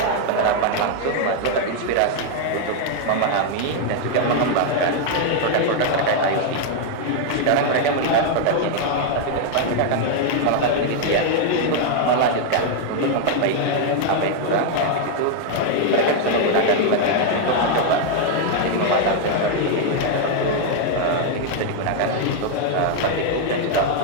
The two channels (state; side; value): different; both; correlation 0.00